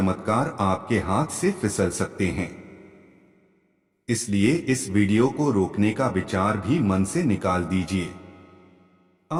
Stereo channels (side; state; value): both; identical; correlation 1.00